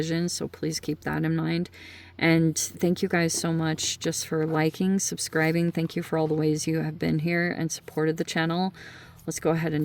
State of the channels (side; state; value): both; identical; correlation 1.00